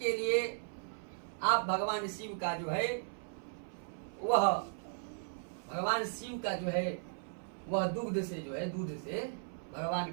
लिए आप भगवान शिव का जो है वह भगवान शिव का जो है वह दूध से जो है दूध से भगवान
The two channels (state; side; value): silent; left; 53 dB below the other